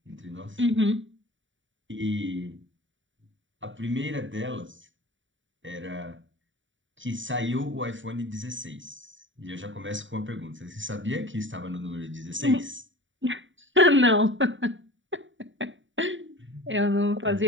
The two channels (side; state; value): left; late; 0.55 ms